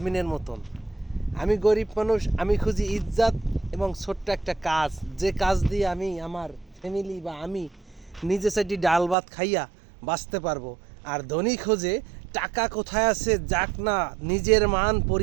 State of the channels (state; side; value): drops out; left; at 9.2 s